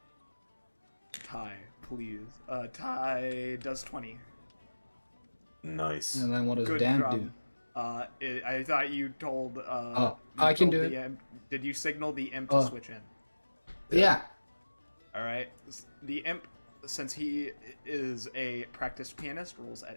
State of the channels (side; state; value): both; inverted; correlation -1.00